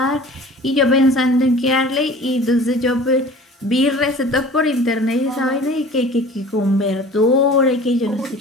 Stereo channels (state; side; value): normal; both; correlation 0.44